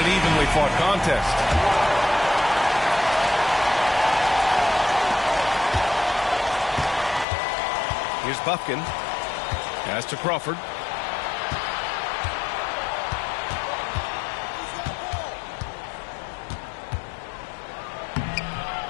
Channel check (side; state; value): right; drops out; at 7.2 s